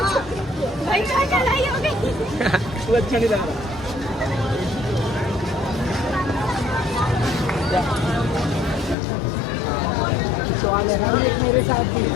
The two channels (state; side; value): drops out; right; at 9.0 s